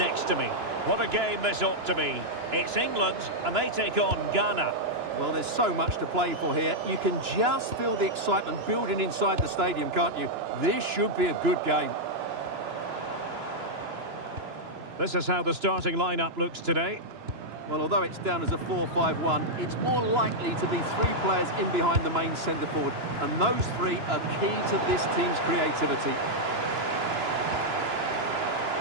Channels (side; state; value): left; late; 2.9 ms